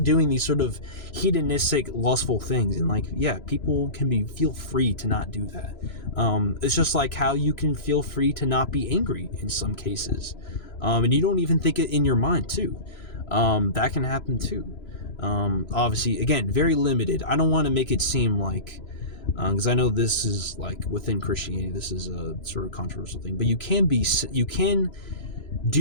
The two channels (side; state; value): right; late; 3.0 ms